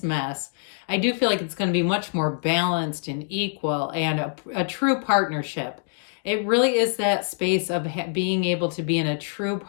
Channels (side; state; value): right; silent; digital silence